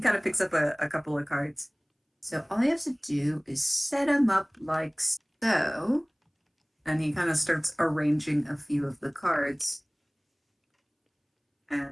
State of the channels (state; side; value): identical; both; correlation 1.00